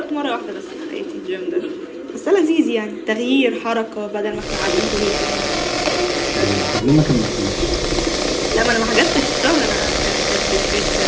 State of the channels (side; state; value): both; identical; correlation 1.00